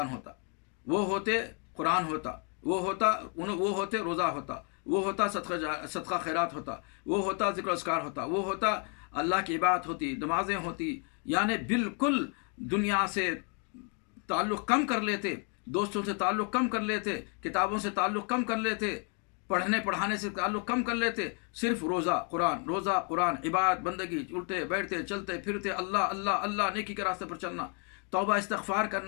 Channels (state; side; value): quieter; right; 39.2 dB